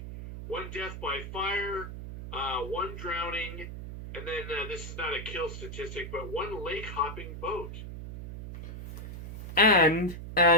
one death by fire, one drowning, and then this is not a kill statistic, but one lake hopping boat. And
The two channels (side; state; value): right; noise; hum, 9 dB below the sound